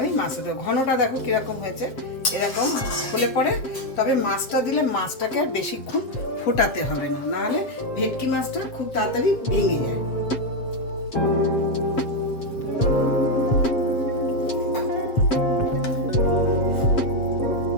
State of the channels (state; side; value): late; right; 7.5 ms